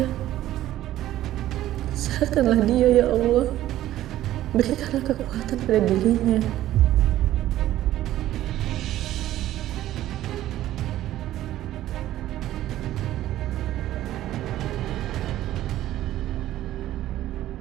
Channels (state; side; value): quieter; left; 13.8 dB